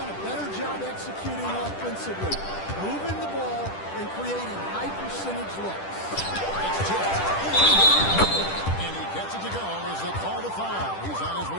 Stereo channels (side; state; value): right; late; 10 ms